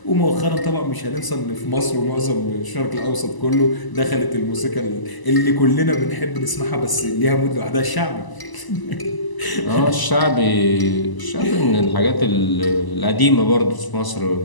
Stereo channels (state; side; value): late; right; 1.0 ms